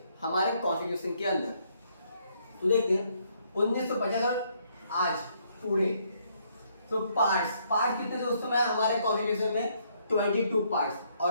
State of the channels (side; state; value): both; inverted; correlation -0.70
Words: हमारे कॉन्स्टिट्यूशन के अंदर। तो देखते हैं 1950 और आज पूरे। तो पार्ट कितने थे उस समय हमारे कॉन्स्टिट्यूशन में? 22 पार्ट्स।